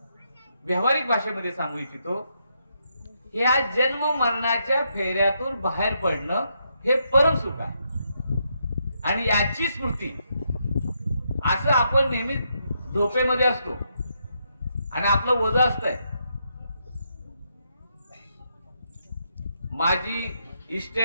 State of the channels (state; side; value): inverted; both; correlation -0.79